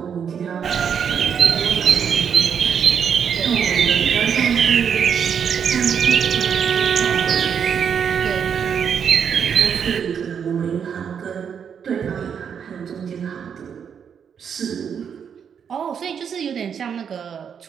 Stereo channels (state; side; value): quieter; left; 7.5 dB